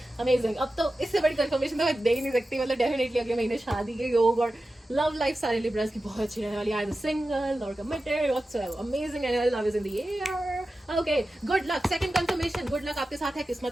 amazing। अब तो इससे बड़ी कंफर्मेशन तो मैं दे ही नहीं सकती, मतलब डेफिनेटली अगले महीने शादी के योग और लव लाइफ सारे लिब्रास की बहुत अच्छी रहने वाली है, either single or committed whatsoever, amazing and love is in the air। okay, good luck, second confirmation, good luck आपके साथ है,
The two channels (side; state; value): both; normal; correlation 0.93